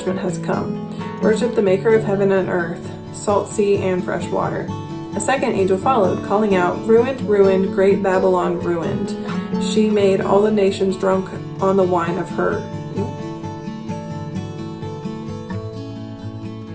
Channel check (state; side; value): identical; both; correlation 1.00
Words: has come. Worship the maker of heaven and earth, salt sea and fresh water." A second angel followed, calling out, "Ruined, ruined, great Babylon ruined. She made all the nations drunk on the wine of her."